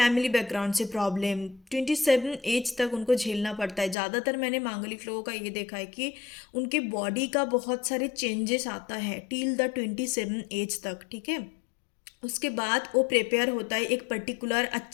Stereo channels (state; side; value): drops out; right; at 4.0 s